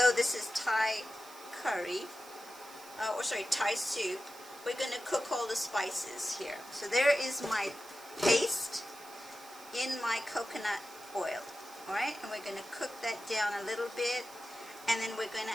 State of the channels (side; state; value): right; noise; hiss, 18 dB below the sound